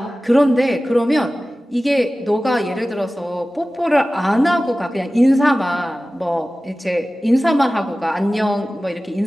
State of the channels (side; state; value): both; normal; correlation 0.96